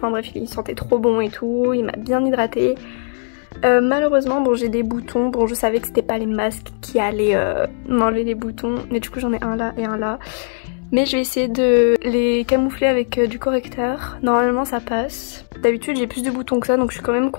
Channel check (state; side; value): silent; right; digital silence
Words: bref, il sentait trop bon et tout, il m'a bien hydratée. Malheureusement bon j'ai des boutons, bon je savais que c'était pas les masques qui allaient m'enlever les boutons. Mais du coup j'en ai un là et un là. Mais je vais essayer de les camoufler avec du correcteur. Normalement ça passe. D'habitude j'ai plus de boutons que ça donc je suis quand même